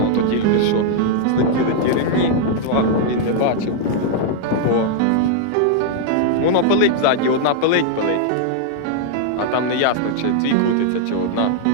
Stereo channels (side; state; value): both; different; correlation 0.00